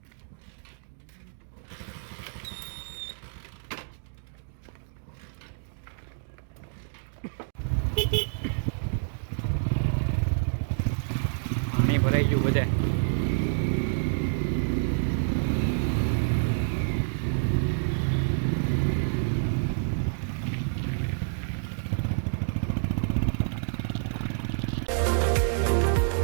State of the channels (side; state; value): left; silent; digital silence